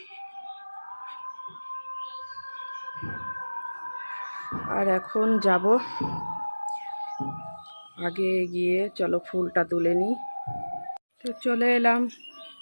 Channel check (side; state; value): both; inverted; correlation -1.00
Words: আর এখন যাব, আগে গিয়ে চলো ফুলটা তুলে নিই। তো চলে এলাম